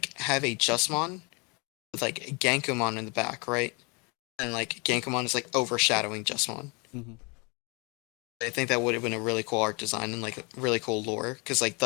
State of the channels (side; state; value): right; quieter; 30.9 dB